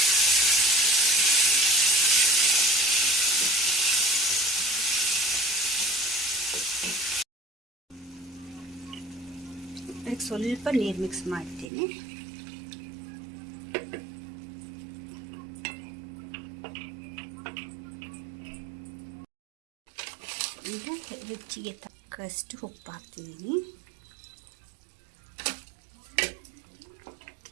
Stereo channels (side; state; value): left; drops out; at 11.7 s